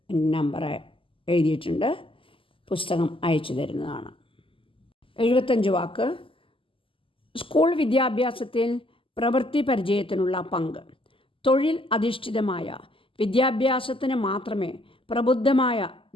നമ്പർ എഴുതിയിട്ടുണ്ട്. പുസ്തകം അയച്ചു തരുന്നതാണ്. 75 വാക്ക്. സ്കൂൾ വിദ്യാഭ്യാസത്തിൽ പ്രവൃത്തി പരിചയത്തിനുള്ള പങ്ക്. തൊഴിൽ അധിഷ്ഠിതമായ വിദ്യാഭ്യാസത്തിന് മാത്രമേ പ്രബുദ്ധമായ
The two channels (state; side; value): late; right; 0.25 ms